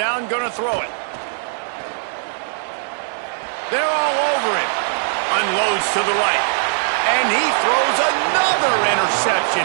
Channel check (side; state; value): left; silent; 66 dB below the other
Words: gonna throw it. They're all over him. Unloads to the right. And he throws another interception.